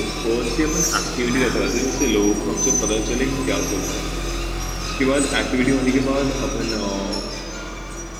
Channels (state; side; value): identical; both; correlation 1.00